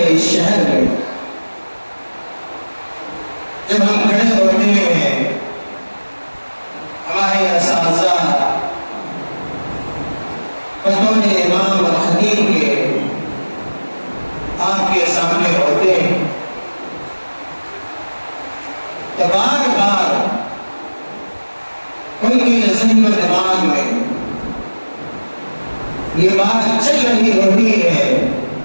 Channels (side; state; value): both; inverted; correlation -1.00